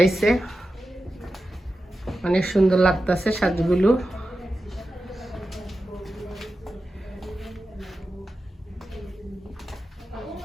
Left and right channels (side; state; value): both; normal; correlation 0.92